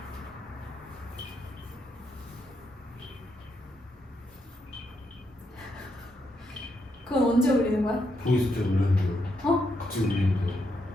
그건 언제 올리는 거야? 보이스 때 울렸는데요. 같이 울리는데요.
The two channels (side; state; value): both; normal; correlation 0.80